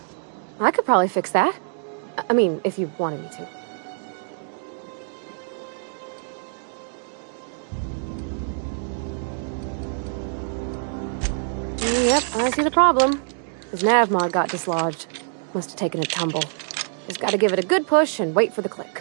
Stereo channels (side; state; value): left; silent; digital silence